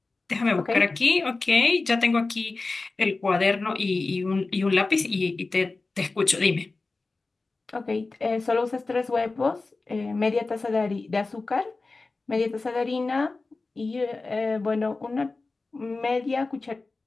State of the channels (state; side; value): quieter; right; 3.6 dB